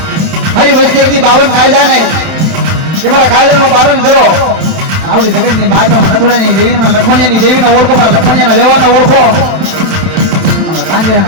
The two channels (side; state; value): left; late; 32 ms